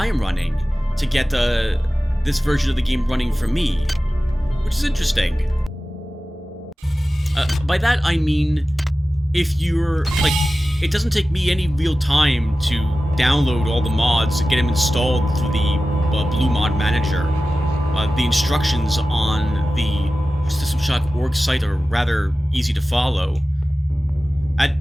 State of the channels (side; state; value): both; normal; correlation 0.95